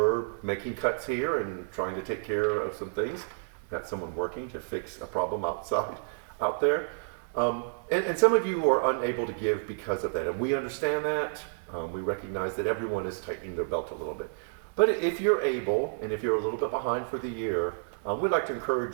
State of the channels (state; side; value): silent; left; digital silence